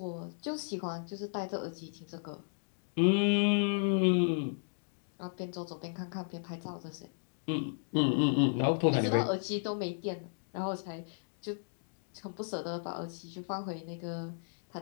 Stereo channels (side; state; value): right; silent; digital silence